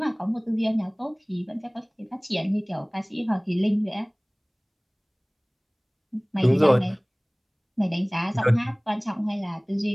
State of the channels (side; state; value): both; identical; correlation 1.00